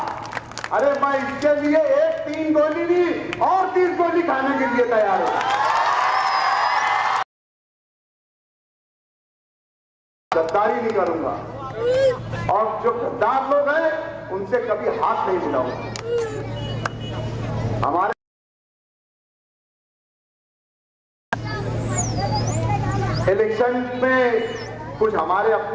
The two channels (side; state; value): both; identical; correlation 1.00